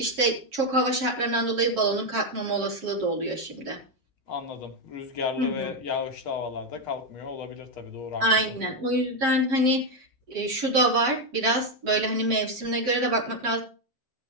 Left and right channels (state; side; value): late; left; 7.5 ms